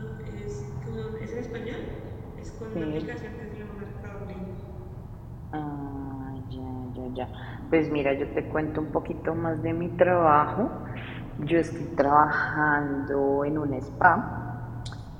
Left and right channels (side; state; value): both; identical; correlation 1.00